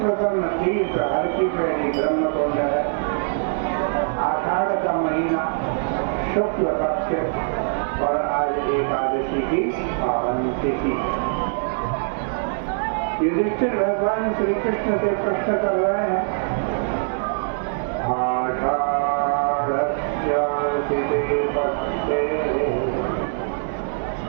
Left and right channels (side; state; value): left; silent; 64 dB below the other